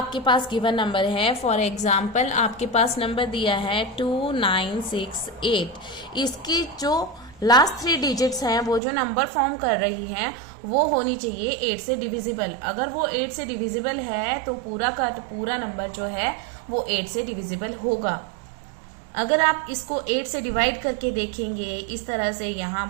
पास given number है, for example आपके पास number दिया है 2968, इसकी जो लास्ट 3 डिजिट्स हैं वो जो नंबर फॉर्म कर रही हैं वो होनी चाहिए 8 से डिविजिबल। अगर वो 8 से डिविजिबल है तो पूरा का पूरा नंबर जो है वो 8 से डिविजिबल होगा। अगर आप इसको 8 से डिवाइड करके देखेंगे इस तरह से, यहाँ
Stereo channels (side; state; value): left; drops out; at 8.8 s